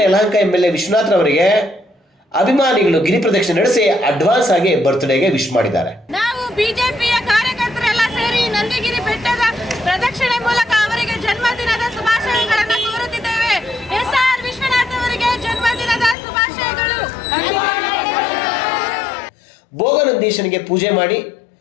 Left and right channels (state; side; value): drops out; right; at 16.2 s